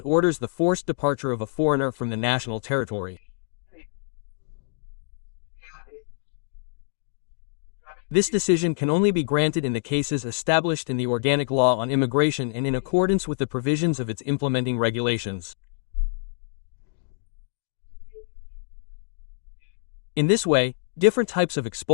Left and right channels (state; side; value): silent; right; digital silence